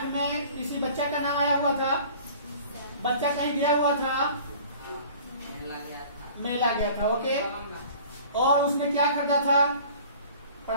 में किसी बच्चा का नाम आया हुआ था। बच्चा कहीं गया हुआ था, मेला गया था। ओके, और उसने क्या करता था,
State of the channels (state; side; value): inverted; both; correlation -0.47